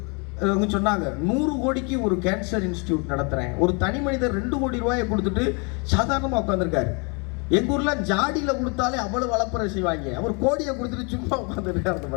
சொன்னாங்க 100 கோடிக்கு ஒரு கேன்சர் இன்ஸ்டிடியூட் நடத்துறேன். ஒரு தனி மனிதர் 2 கோடி ரூபாயை கொடுத்துட்டு சாதாரணமாக உட்காந்துருக்காரு. எங்க ஊர்ல ஜாடியில கொடுத்தாலே அவ்வளவு வளப்பறை செய்வாங்க. அவர் கோடியை கொடுத்துட்டு சும்மா உட்காந்துருக்காரு அந்த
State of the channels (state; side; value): quieter; right; 33.2 dB